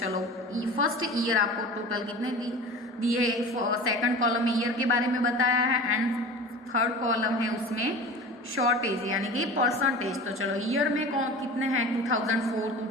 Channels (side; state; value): both; normal; correlation 0.36